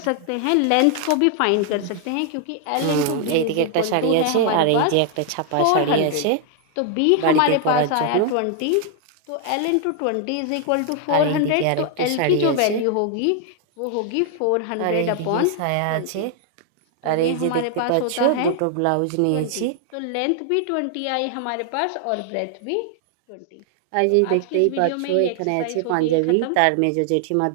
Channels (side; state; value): both; different; correlation 0.00